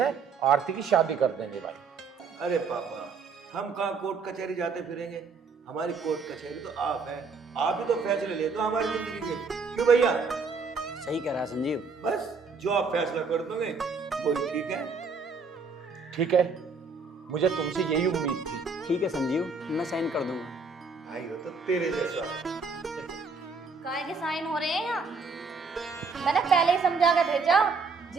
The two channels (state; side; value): quieter; left; 4.7 dB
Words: आरती की शादी कर देंगे भाई। अरे पापा, हम कहाँ कोर्ट कचहरी जाते फिरेंगे? हमारी कोर्ट कचहरी तो आप हैं। आप ही तो फैसले लेते हो हमारी जिंदगी के, क्यों भैया? सही कह रहा है संजीव। बस जो आप फैसला कर दोगे वही ठीक है। ठीक है, मुझे तुमसे यही उम्मीद थी। ठीक है संजीव, मैं साइन कर दूंगा। भाई हो तो तेरे जैसा। काय के साइन हो रहे हैं यहाँ? मैंने पहले ही समझा के भेजा,